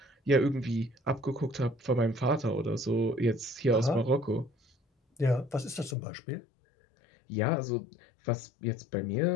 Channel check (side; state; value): right; drops out; at 6.0 s